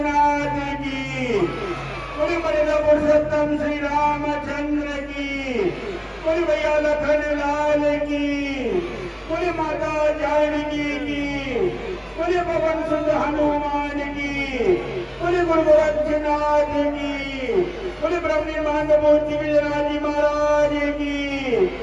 की, बोलिए मर्यादा पुरुषोत्तम श्री रामचंद्र की, बोलिए भैया लखन लाल की, बोलिए माता जानकी की, बोलिए पवन सुत हनुमान की, बोलिए गुरु गोरक्षनाथ की, बोलिए ब्रह्म निर्माण मूर्ति विजयराजी महाराज की,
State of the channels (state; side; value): identical; both; correlation 1.00